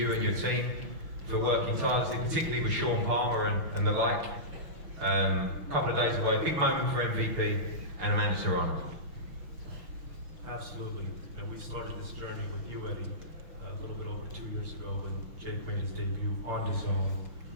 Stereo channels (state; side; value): late; left; 6.2 ms